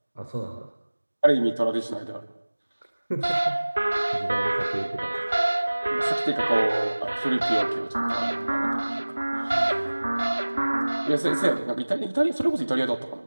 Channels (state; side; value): inverted; both; correlation -1.00